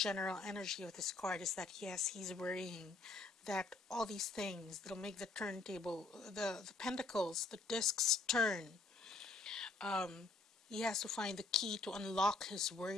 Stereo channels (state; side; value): quieter; right; 3.5 dB